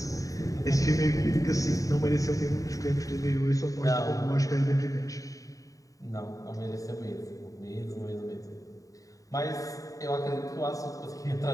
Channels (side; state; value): right; late; 0.16 ms